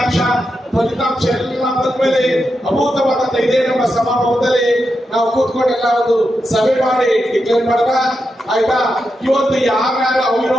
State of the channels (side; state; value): both; normal; correlation 0.87